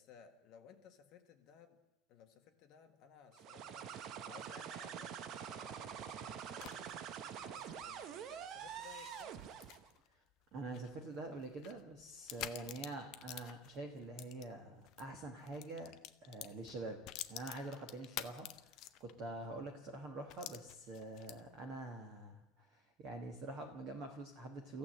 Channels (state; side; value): normal; both; correlation 0.39